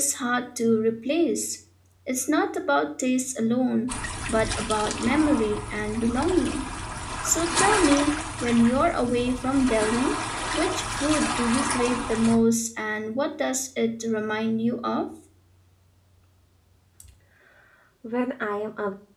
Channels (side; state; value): both; identical; correlation 1.00